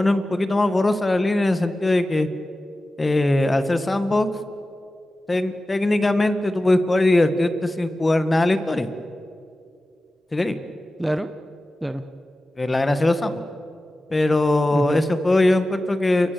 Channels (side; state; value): both; normal; correlation 0.95